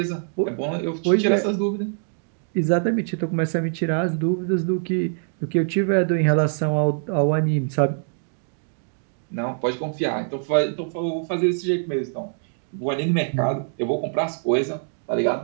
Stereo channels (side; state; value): left; silent; digital silence